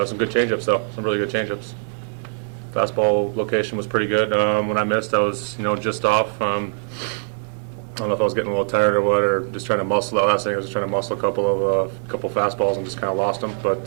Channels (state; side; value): silent; left; digital silence